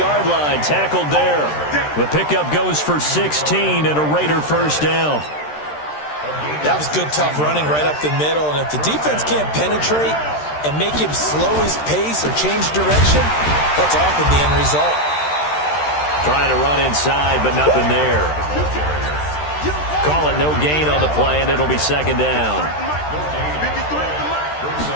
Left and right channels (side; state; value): right; late; 13 ms